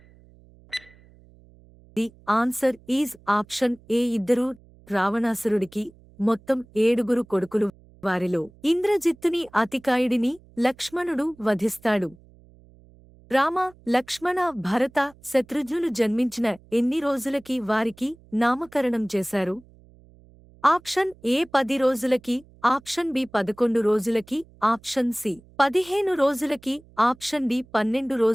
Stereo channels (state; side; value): noise; right; hum, 26 dB below the sound